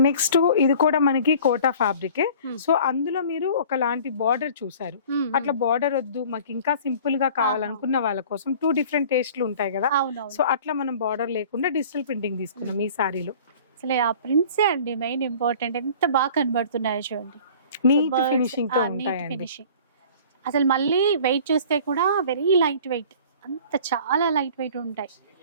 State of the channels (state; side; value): inverted; both; correlation -0.46